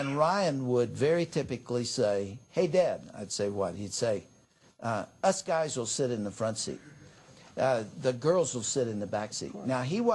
Ryan would very typically say, "Hey, Dad." I'd say, "What?" He'd say, "Us guys will sit in the front seat. The girls will sit in the back seat." Now, he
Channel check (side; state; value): both; identical; correlation 1.00